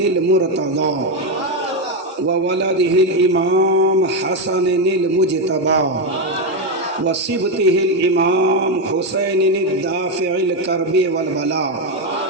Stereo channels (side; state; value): both; normal; correlation 0.07